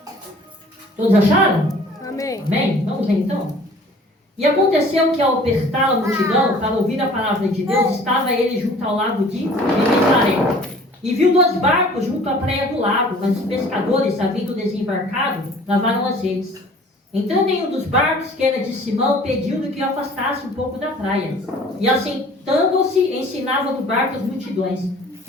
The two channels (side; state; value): both; normal; correlation 0.50